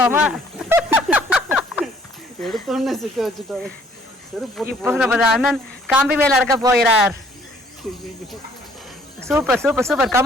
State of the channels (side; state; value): both; normal; correlation 0.60